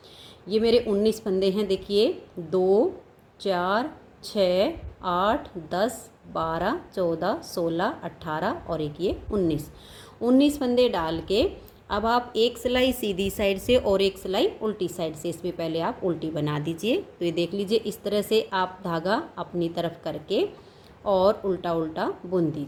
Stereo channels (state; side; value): identical; both; correlation 1.00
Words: ये मेरे 19 फंदे हैं। देखिए 2, 4, 6, 8, 10, 12, 14, 16, 18 और एक ये 19 फंदे डाल के अब आप एक सिलाई सीधी साइड से और एक सिलाई उल्टी साइड से, इसमें पहले आप उल्टी बना दीजिए। तो ये देख लीजिए, इस तरह से आप धागा अपनी तरफ करके और उल्टा उल्टा बुन